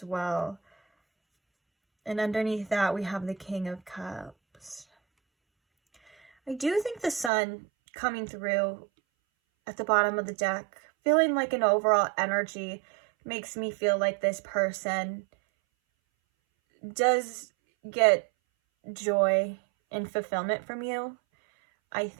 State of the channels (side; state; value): left; drops out; at 7.3 s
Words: well. And underneath that, we have the King of Cups. I do think the Sun coming through at the bottom of the deck, feeling like an overall energy, makes me feel like this person does get joy and fulfillment from you. I